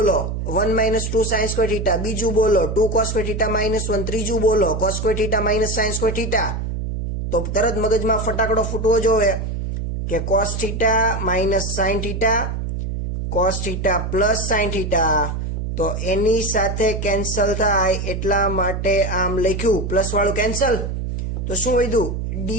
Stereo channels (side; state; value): right; noise; hum, 3 dB below the sound